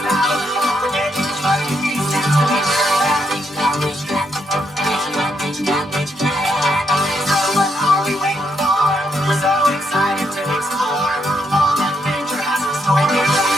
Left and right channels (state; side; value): normal; both; correlation 0.77